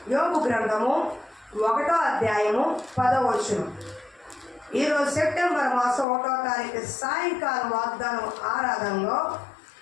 యోబు గ్రంథము 1వ అధ్యాయము 10వ వచనం. ఈరోజు సెప్టెంబర్ మాసం 1వ తారీఖు సాయంకాలం వాగ్దానం ఆరాధనలో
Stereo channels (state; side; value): drops out; right; at 6.1 s